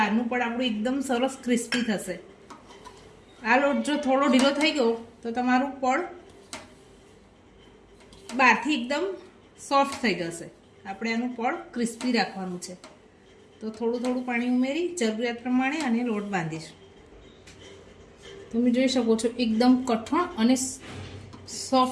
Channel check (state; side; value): identical; both; correlation 1.00